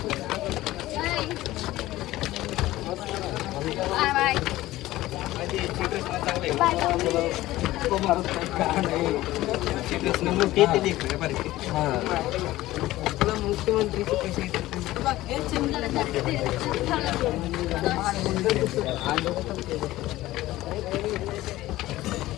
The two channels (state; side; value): quieter; right; 16.6 dB